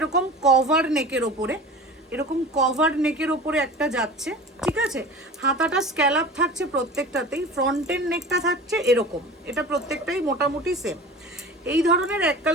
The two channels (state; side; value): normal; both; correlation 0.37